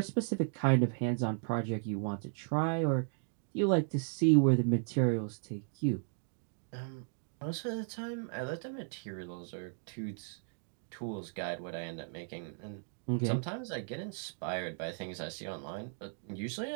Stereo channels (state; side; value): silent; left; digital silence